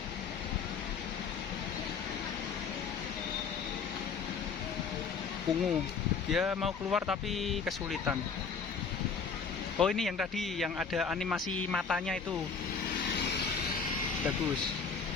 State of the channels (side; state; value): right; quieter; 5.6 dB